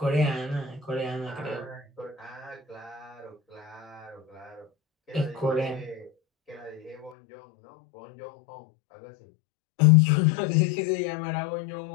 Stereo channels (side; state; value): right; drops out; at 7.2 s